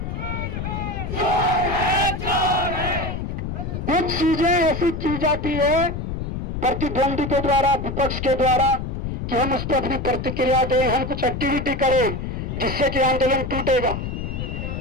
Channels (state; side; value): noise; left; rumble, 4 dB below the sound